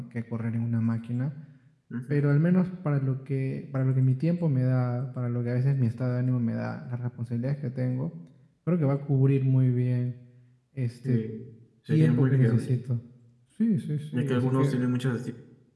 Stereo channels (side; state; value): both; identical; correlation 1.00